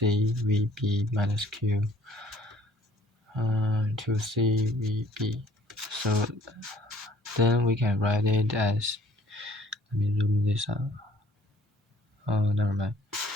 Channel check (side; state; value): both; normal; correlation 0.57